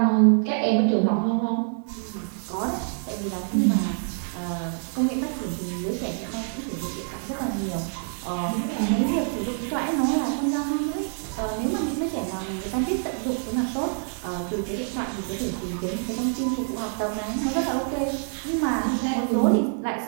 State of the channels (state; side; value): silent; left; 60 dB below the other